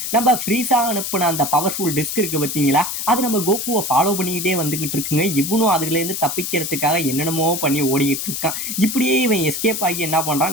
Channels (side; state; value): left; noise; hiss, 4 dB below the sound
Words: நம்ம ஃப்ரீஸா அனுப்புன அந்த பவர்ஃபுல் டிஸ்க் இருக்கு பார்த்தீங்களா, அது நம்ம கோகுவை ஃபாலோ பண்ணிக்கிட்டே வந்துகிட்டு இருக்குங்க. இவனும் அதுலேருந்து தப்பிக்கிறதுக்காக என்னென்னமோ பண்ணி ஓடிக்கிட்டு இருக்கான். இப்படியே இவன் எஸ்கேப் ஆகி என்ன